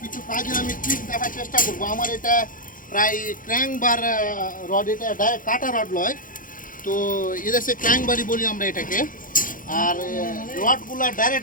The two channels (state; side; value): late; right; 0.39 ms